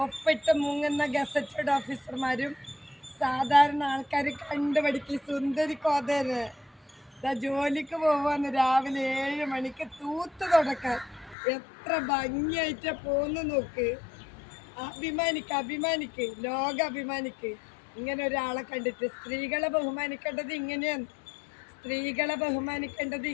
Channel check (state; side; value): drops out; right; at 11.4 s